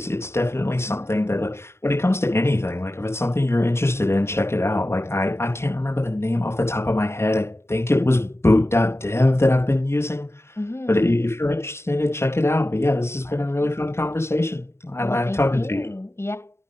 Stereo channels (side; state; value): right; late; 0.13 ms